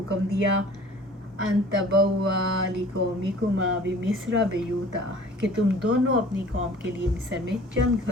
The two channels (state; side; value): normal; both; correlation 0.48